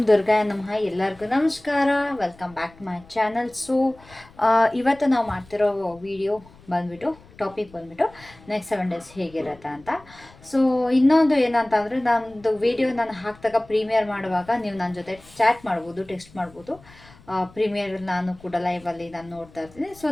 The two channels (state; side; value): noise; left; rumble, 24 dB below the sound